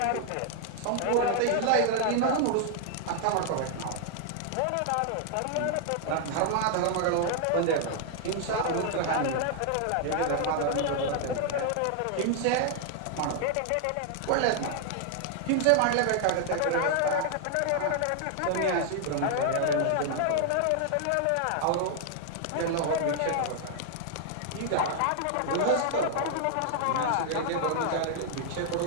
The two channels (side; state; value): both; different; correlation 0.00